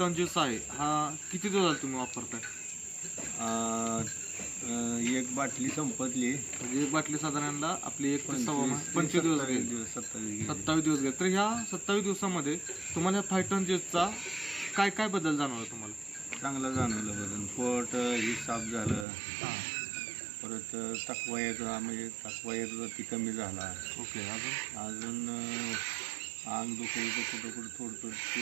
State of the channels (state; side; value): drops out; left; at 19.1 s